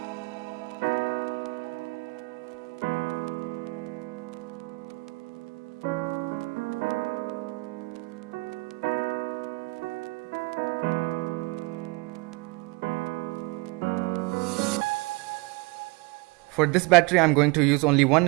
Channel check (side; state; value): left; quieter; 25.4 dB